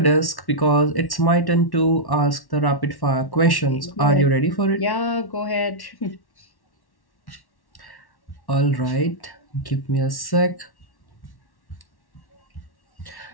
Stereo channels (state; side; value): late; right; 1.1 ms